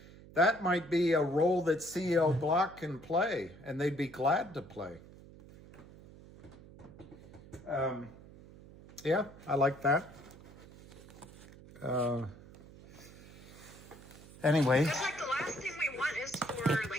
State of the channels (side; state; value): right; noise; hum, 19 dB below the sound